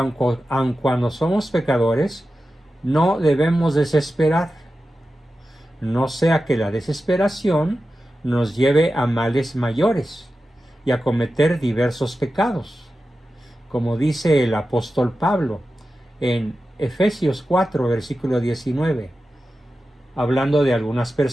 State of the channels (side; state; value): both; normal; correlation 0.93